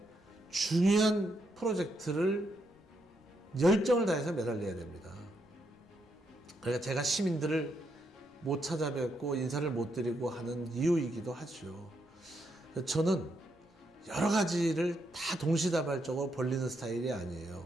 중요한 프로젝트를 열정을 다해서 매달려야 됩니다. 그러니까 제가 시민들을 못 찾아뵙고 인사를 못 드리고 하는 이유이기도 하죠. 저는 여러 가지를 다 동시다발적으로 벌리는 스타일이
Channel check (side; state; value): both; normal; correlation 0.79